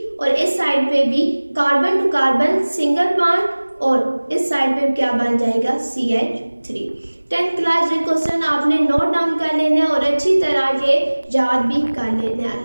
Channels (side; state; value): both; inverted; correlation -1.00